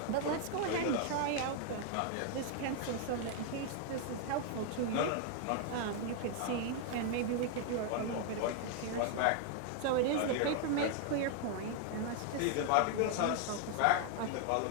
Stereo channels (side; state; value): both; different; correlation 0.00